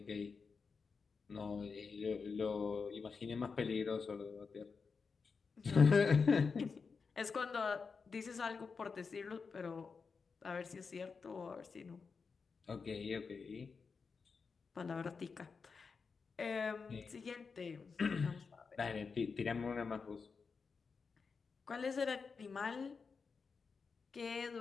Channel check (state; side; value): quieter; right; 5.1 dB